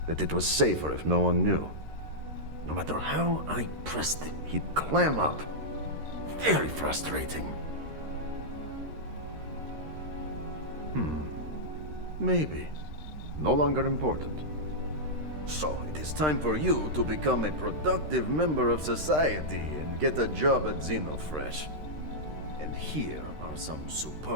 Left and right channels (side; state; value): left; late; 13 ms